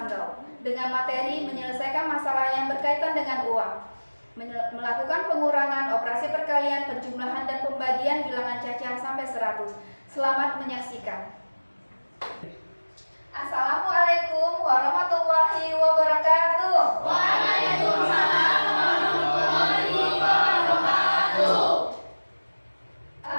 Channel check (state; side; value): inverted; both; correlation -1.00